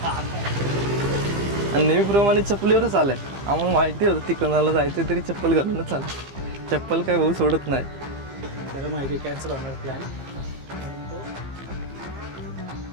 आणि नेहमीप्रमाणे चप्पलीवरच आलं आहे. आम्हाला माहिती होतं तिकोनाला जायचं तरी चप्पल घालूनच आलं. चप्पल काय भाऊ सोडत नाही. त्याला माहिती कॅन्सल होणार प्लॅन.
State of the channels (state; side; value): late; left; 15 ms